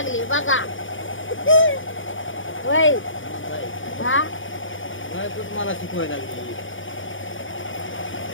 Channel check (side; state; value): right; late; 0.57 ms